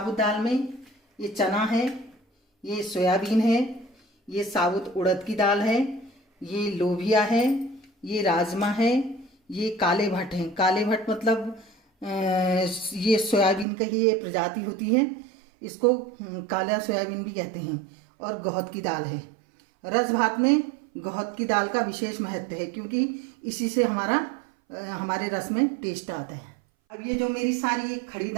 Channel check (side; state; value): left; drops out; at 13.7 s